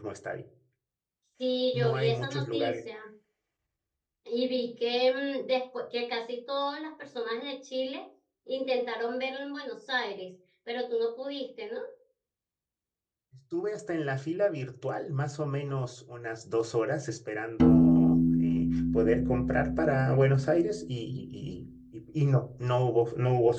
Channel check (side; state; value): both; identical; correlation 1.00